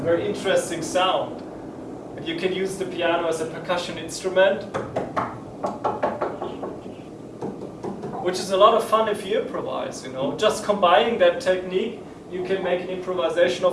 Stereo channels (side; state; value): both; identical; correlation 1.00